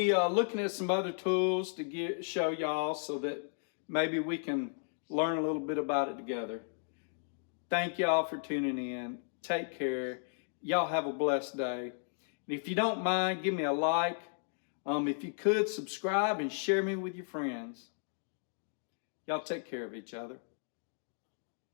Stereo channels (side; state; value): right; silent; digital silence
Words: looking at some other tools to show y'all so that maybe we can learn a little bit about it together. Thank y'all for tuning in. Take care. Y'all have a blessed day. And if you don't mind, give me a like. If you could, subscribe and share me with your friends. Y'all take care of each other.